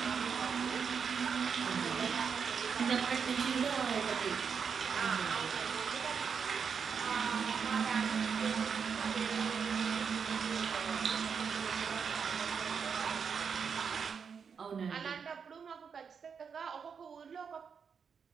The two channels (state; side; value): quieter; left; 6.4 dB